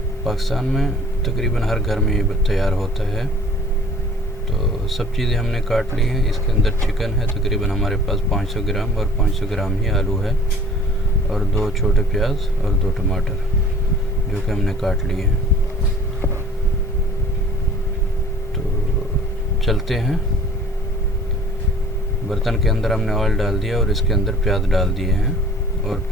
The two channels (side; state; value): both; normal; correlation 0.50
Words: पाकिस्तान में तकरीबन हर घर में ये तैयार होता है। तो सब चीज़ें हमने काट ली हैं। इसके अंदर चिकन है, तकरीबन हमारे पास 500 ग्राम, और 500 ग्राम ही आलू है, और 2 छोटे प्याज और 2 टमाटर, जो कि हमने काट लिए हैं। तो चलते हैं। बर्तन के अंदर हमने ऑयल डाल दिया और इसके अंदर प्याज डाल दिए हैं, और